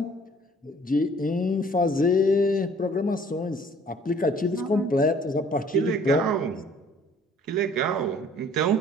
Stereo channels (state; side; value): normal; both; correlation 0.55